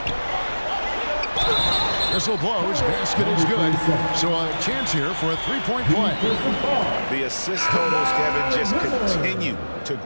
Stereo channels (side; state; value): both; inverted; correlation -1.00